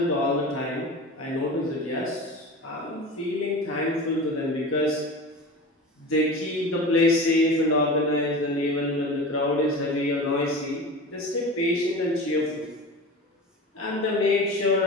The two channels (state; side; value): normal; both; correlation 0.32